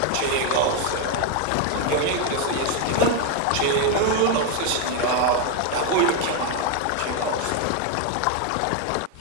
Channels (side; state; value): both; different; correlation 0.01